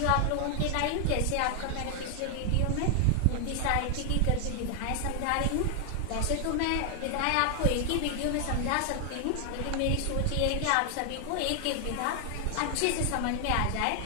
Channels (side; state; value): both; different; correlation 0.00